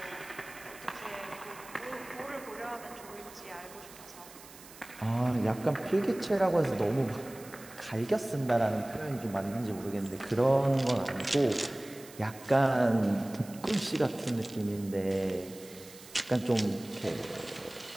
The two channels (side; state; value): right; noise; hiss, 19 dB below the sound